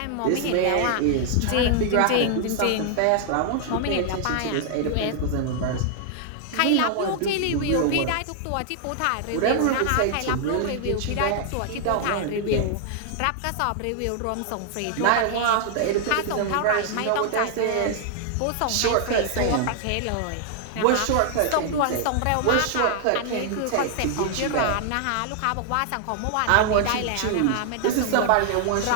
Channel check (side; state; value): both; different; correlation 0.00